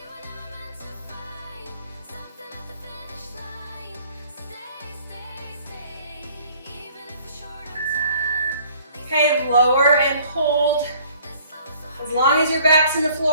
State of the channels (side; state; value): both; inverted; correlation -0.56